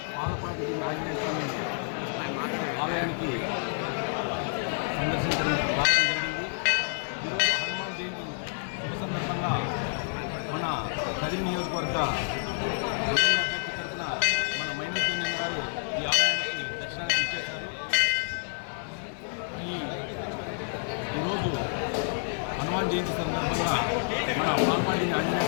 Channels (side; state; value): right; silent; 57 dB below the other